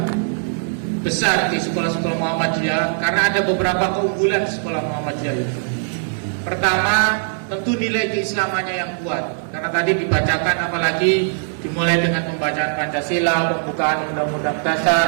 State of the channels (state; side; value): silent; left; digital silence